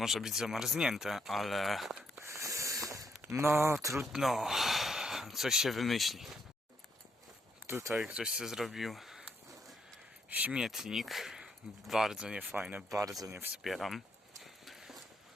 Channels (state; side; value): normal; both; correlation 0.75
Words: być zamarznięte, ale... No, trudno. Coś się wymyśli. Tutaj ktoś sobie zrobił śmietnik. Bardzo niefajne, bardzo nie wspieram.